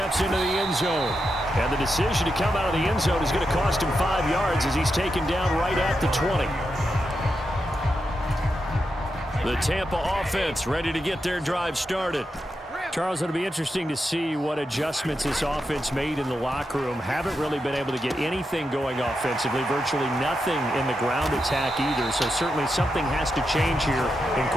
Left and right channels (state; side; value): normal; both; correlation 0.86